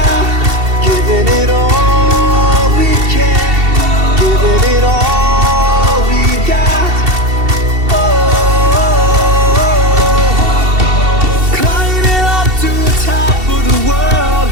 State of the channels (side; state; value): left; late; 2.7 ms